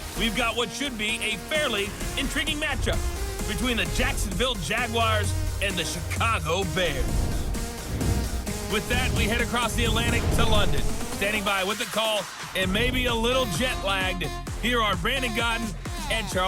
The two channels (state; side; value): identical; both; correlation 1.00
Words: we've got what should be a fairly intriguing matchup between the Jacksonville Jaguars and the Chicago Bears. With that, we head across the Atlantic to London. Standing by with the call and maybe a little jet-lagged, here are Brandon Gaudin and